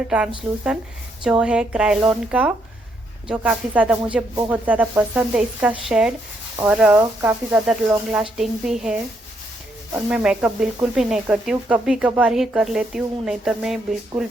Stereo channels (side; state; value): both; normal; correlation 0.75